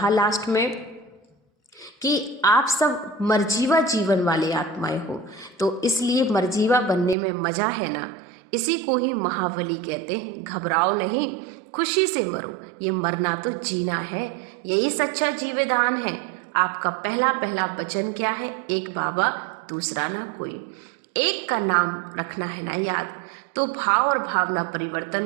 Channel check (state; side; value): drops out; left; at 7.2 s